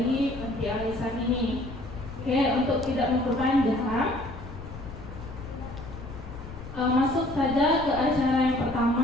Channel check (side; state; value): left; noise; rumble, 12 dB below the sound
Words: Panti Al-Ihsan ini. Oke, untuk tidak memperpanjang, masuk saja ke acara yang